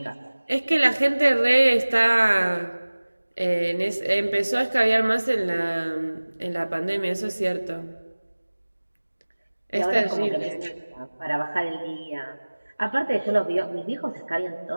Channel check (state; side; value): inverted; both; correlation -1.00